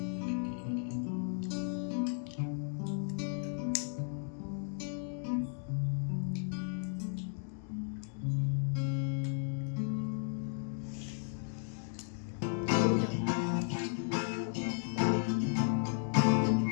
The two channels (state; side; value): silent; right; 54 dB below the other